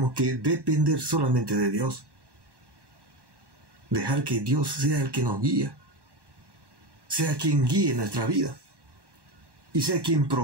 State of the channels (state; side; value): late; left; 1.1 ms